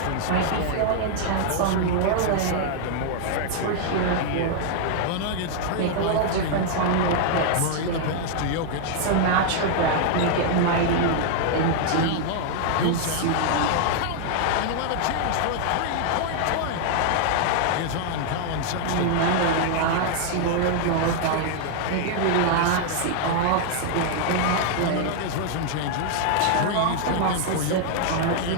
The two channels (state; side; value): different; both; correlation 0.00